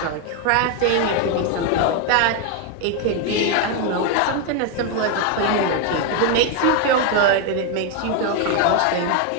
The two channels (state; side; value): different; both; correlation 0.01